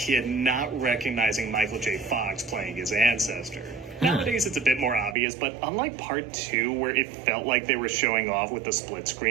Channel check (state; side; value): drops out; left; at 5.2 s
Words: not recognizing Michael J. Fox playing his ancestor. Nowadays, it's a bit more obvious, but unlike part 2, where it felt like they were showing off with the split